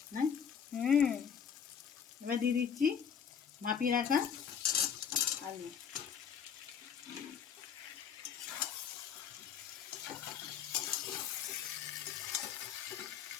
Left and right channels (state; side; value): quieter; right; 7.6 dB